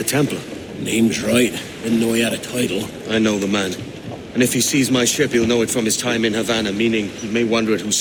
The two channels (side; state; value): both; identical; correlation 1.00